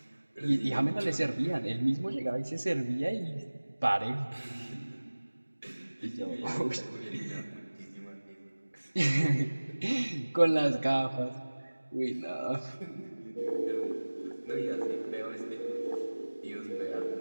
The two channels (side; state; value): both; inverted; correlation -1.00